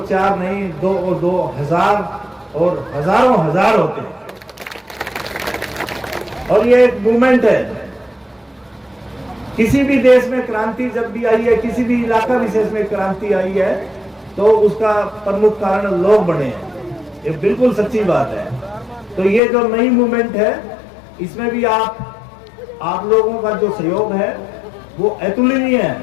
4 नहीं, 2 और 2 1000 और हजारों हजार होते हैं। और ये एक मूवमेंट है। किसी भी देश में क्रांति जब भी आई है, किसी भी इलाका विशेष में क्रांति आई है, तो उसका प्रमुख कारण लोग बने हैं, ये बिल्कुल सच्ची बात है। तो ये जो नई मूवमेंट है इसमें भी आप लोगों का जो सहयोग है वो अतुलनीय है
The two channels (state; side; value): drops out; right; at 19.4 s